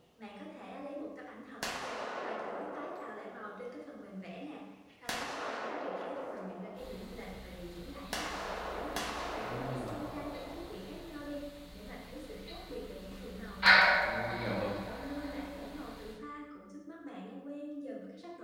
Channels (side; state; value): both; identical; correlation 1.00